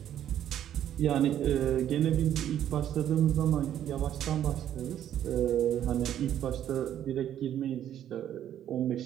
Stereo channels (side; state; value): left; quieter; 10.8 dB